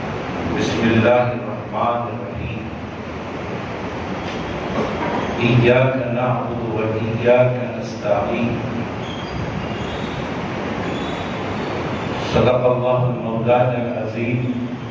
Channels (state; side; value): identical; both; correlation 1.00